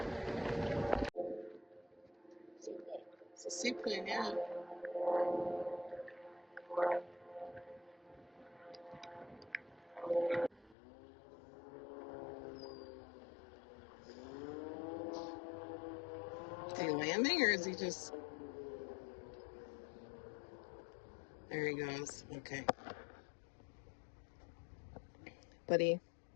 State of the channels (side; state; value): right; drops out; at 10.8 s